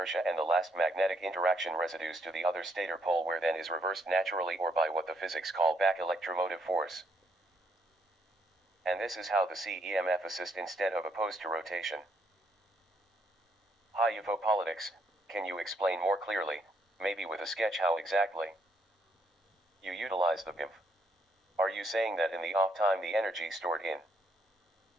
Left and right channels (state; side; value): normal; both; correlation 0.72